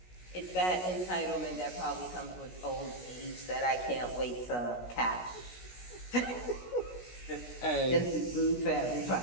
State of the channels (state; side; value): late; right; 16 ms